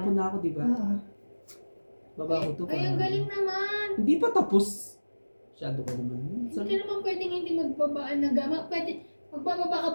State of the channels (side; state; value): both; inverted; correlation -1.00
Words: na ako, diba? Oo. Baba ko to. Ay, ang galing naman. Hindi pa tapos. Masyado ko naman. Hindi ka naman pwedeng hindi magbabaan ng gama. Pwede, magbababa ka